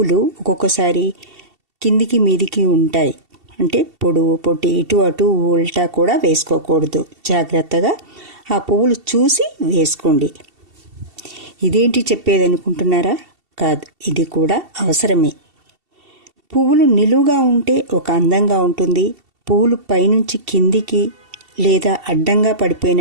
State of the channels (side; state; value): left; late; 2.7 ms